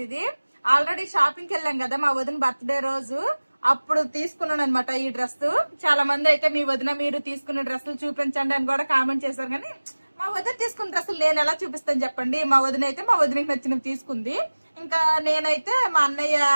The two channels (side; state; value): both; inverted; correlation -1.00